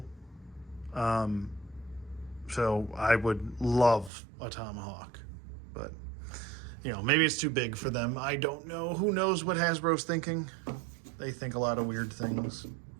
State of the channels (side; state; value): left; drops out; at 4.1 s